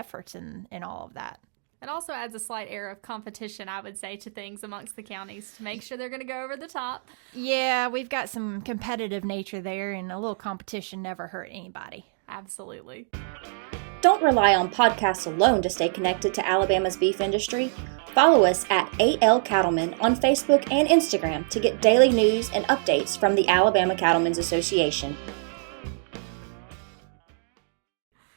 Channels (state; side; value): silent; left; digital silence